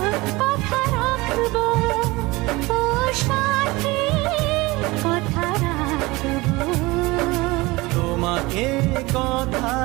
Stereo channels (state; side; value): quieter; left; 22.0 dB